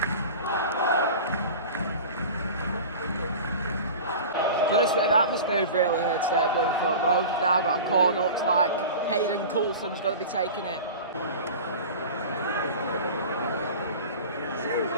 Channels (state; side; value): inverted; both; correlation -0.35